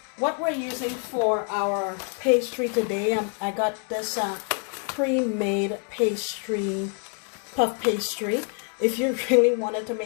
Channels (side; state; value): right; quieter; 39.9 dB